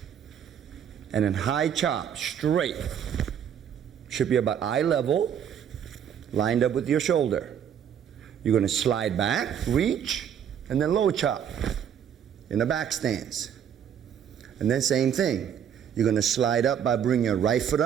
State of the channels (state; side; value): quieter; left; 8.8 dB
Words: and then high chop straight. Should be about eye level, lined up with your shoulder. You're going to slide back, reach, and then low chop in the back stance. And then same thing. You're going to slide up by bringing your right foot